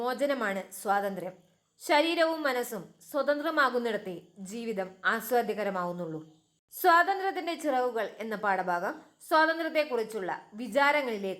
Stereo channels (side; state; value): both; identical; correlation 1.00